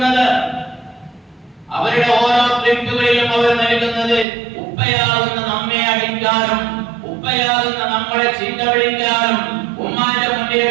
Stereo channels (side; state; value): left; drops out; at 4.2 s